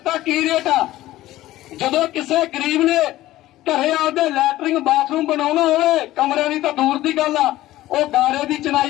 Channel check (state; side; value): quieter; right; 15.7 dB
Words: ਕੀ ਰੇਟ ਆ। ਜਦੋਂ ਕਿਸੇ ਗਰੀਬ ਨੇ ਘਰੇ ਆਪਦੇ ਲੈਟਰਿੰਗ ਬਾਥਰੂਮ ਬਣਾਉਣਾ ਹੋਵੇ, ਕਮਰਿਆਂ ਦੀ ਤਾਂ ਦੂਰ ਦੀ ਗੱਲ ਆ, ਉਹ ਗਾਰੇ ਦੀ